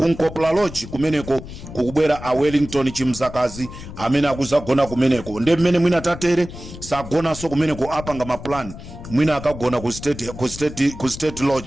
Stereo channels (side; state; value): left; noise; rumble, 13 dB below the sound